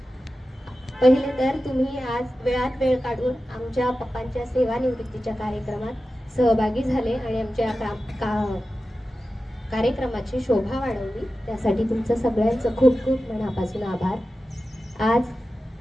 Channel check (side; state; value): both; normal; correlation 0.93